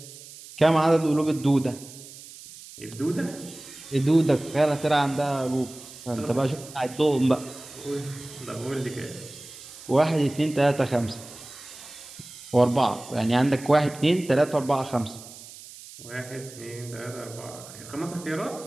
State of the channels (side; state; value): right; noise; hiss, 17 dB below the sound